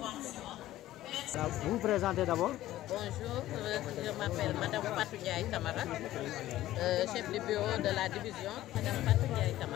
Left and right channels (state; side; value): quieter; right; 14.7 dB